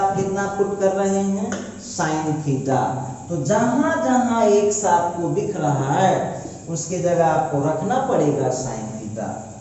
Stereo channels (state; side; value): identical; both; correlation 1.00